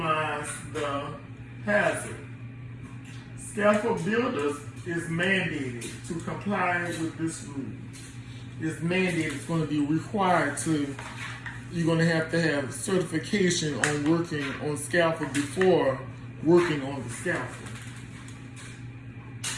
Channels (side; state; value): both; identical; correlation 1.00